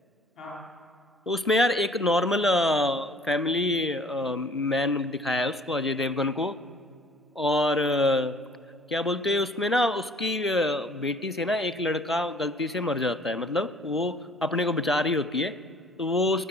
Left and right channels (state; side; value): normal; both; correlation 0.54